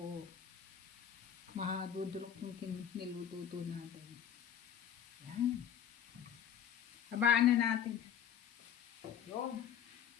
mahadudurok yung nilututo natin. Yan. Habaan na natin. Yun.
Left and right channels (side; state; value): right; quieter; 9.0 dB